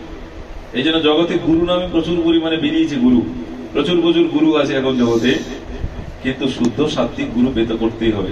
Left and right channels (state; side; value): identical; both; correlation 1.00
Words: এই জন্য জগতে গুরু নামে প্রচুর পরিমাণে বেরিয়েছে। গুরু প্রচুর প্রচুর গুরু আছে এখন জগতে, কিন্তু শুদ্ধ সাত্বিক গুরু পেতে করতেই